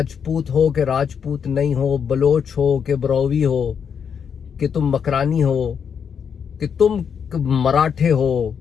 ہو کہ راجپوت نہیں ہو، بلوچ ہو کہ بروی ہو، کہ تم مکرانی ہو، کہ تم مراٹھے ہو،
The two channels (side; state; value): right; quieter; 7.2 dB